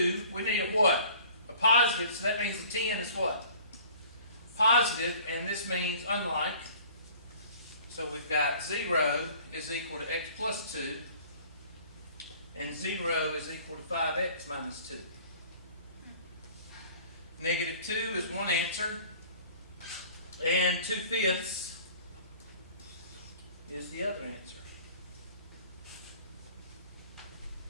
we need a what? A positive, so that means the 10 is what? Positive, and this means unlike. So we've got 0 is equal to x plus 2, and 0 is equal to 5x minus 2. Negative 2 is one answer, and 2/5 is the other answer.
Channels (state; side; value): inverted; both; correlation -0.49